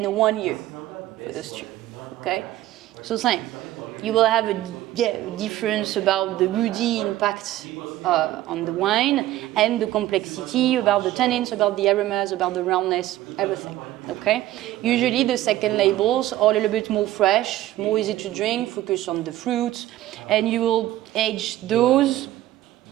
1 year for those 2. Okay? So same. You will have a difference about the woody impact on the wine, and the complexity about the tannins, about the aromas, about the roundness, everything. Okay? Usually the second labels are a little bit more fresh, more easy to drink, focus on the fruits, and you will age those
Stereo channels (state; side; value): quieter; left; 14.7 dB